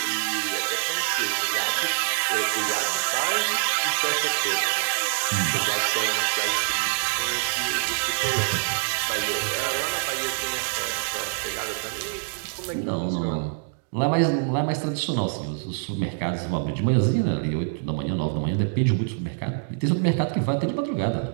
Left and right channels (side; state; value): left; silent; digital silence